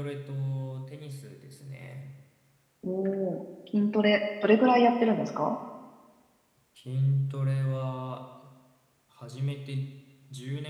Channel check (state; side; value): identical; both; correlation 1.00